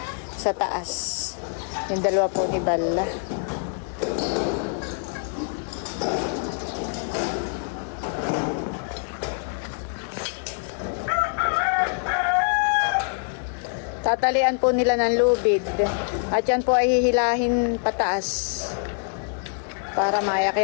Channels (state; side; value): silent; right; 62 dB below the other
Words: sa taas. Yung dalawa po ni Balla. Tatalian po nila ng lubid at yan po ay hihilahin pataas para